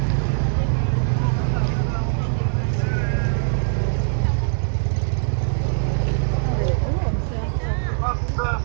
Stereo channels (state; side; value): silent; left; digital silence